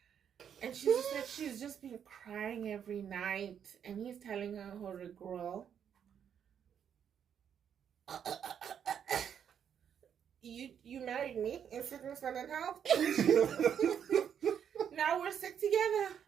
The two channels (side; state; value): left; quieter; 8.4 dB